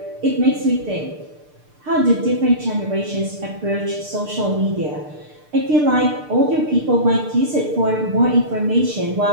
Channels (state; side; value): late; left; 6.7 ms